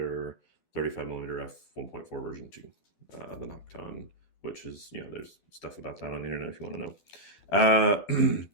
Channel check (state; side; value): late; right; 12 ms